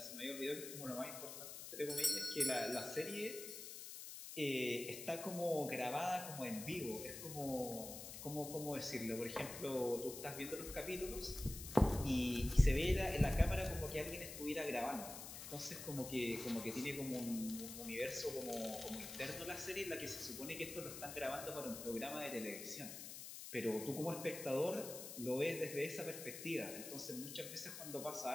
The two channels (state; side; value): noise; left; hiss, 9 dB below the sound